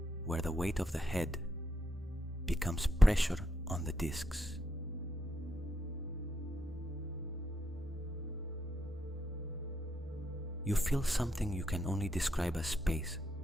where the weight of the head becomes pressure on the discs. You feel something you can only describe as space,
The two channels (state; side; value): normal; both; correlation 0.80